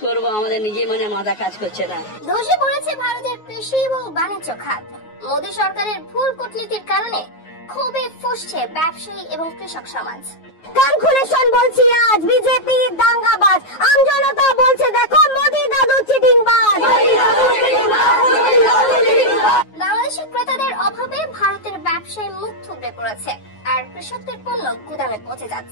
করব, আমাদের নিজে মাথা কাজ করছে না। ধসে পড়েছে ভারতের কৃষি এবং বাণিজ্য খাত। মোদী সরকারের ভুল কূটনীতির কারণে ক্ষোভে ফুঁসছে ব্যবসায়ী এবং কৃষক সমাজ। কান খুলে শোন বলছি আজ বিজেপি দাঙ্গাবাজ, আম জনতা বলছে দেখো মোদি দাদু চিটিংবাজ। বাংলাদেশের ক্রেতাদের অভাবে ভারতের ব্যবসায় মুখ থুবড়ে পড়েছে আর কৃষকদের পণ্য গুদামে পচে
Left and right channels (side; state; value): right; late; 9.4 ms